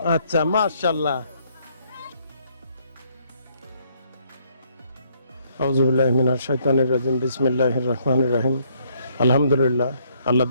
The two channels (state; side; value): inverted; both; correlation -0.68